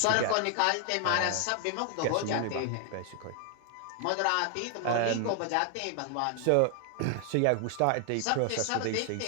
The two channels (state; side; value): different; both; correlation 0.00